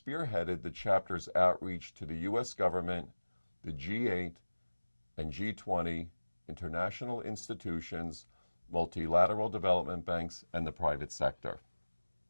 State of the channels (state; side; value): inverted; both; correlation -1.00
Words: the chapter's outreach to the U.S. government, the G8 and G20, international institutions, multilateral development banks, and the private sector.